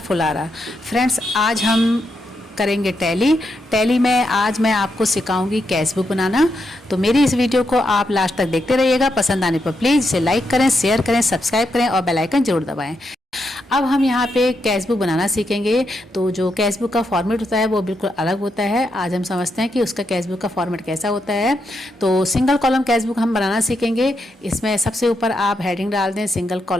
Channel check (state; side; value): normal; both; correlation 0.82